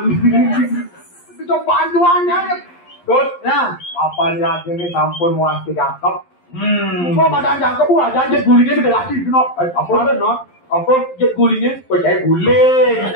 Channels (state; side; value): late; right; 11 ms